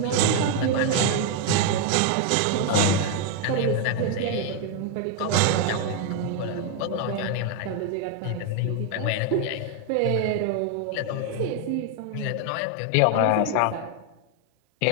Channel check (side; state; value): both; different; correlation 0.01